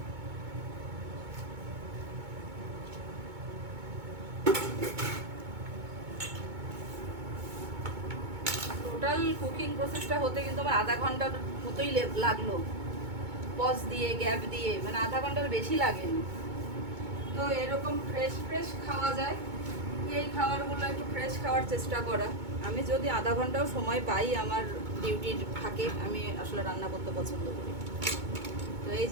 টোটাল কুকিং প্রসেসটা হতে কিন্তু আমার আধা ঘন্টার মতোই লাগলো, পজ দিয়ে গ্যাপ দিয়ে, মানে আধা ঘন্টার বেশি লাগেনি। তো এরকম ফ্রেশ ফ্রেশ খাওয়া যায়, এই খাবারগুলো একটু ফ্রেশ খাওয়ার চেষ্টা করা। আমি যদি আধা ঘন্টাও সময় পাই আমার ডিউটির ফাঁকে, আমি আসলে রান্না করতে পছন্দ করি। তো এই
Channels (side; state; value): left; late; 2.2 ms